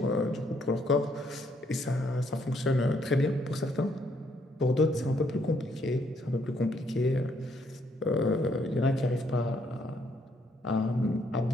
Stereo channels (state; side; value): normal; both; correlation 0.71